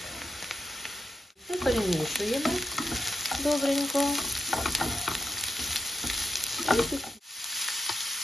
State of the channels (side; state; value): both; normal; correlation 0.86